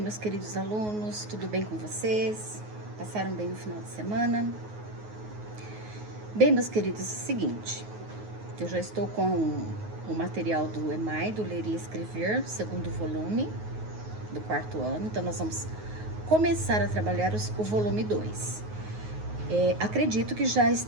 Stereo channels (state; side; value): late; left; 9.4 ms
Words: queridos alunos, tudo bem com vocês? Passaram bem no final de semana? Bem, meus queridos, é o seguinte, eu já estou com o material do EMAI, do Ler e Escrever, segundo volume, do quarto ano, então nós vamos começar a trabalhar o volume 2. Acredito que já